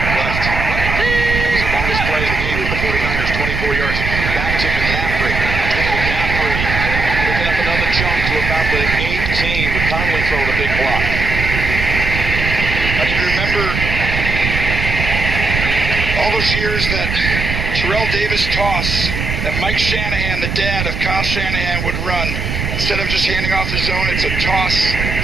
It was the longest play of the game for the 49ers, 24 yards. Back to McCaffrey. McCaffrey picking up another chunk to about the 18 with Conley throwing a big block. I can remember all those years that Terrell Davis toss that Mike Shanahan, the dad of Kyle Shanahan, would run. Instead of just handing off the zone, it's a toss,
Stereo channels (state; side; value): noise; right; rumble, 3 dB below the sound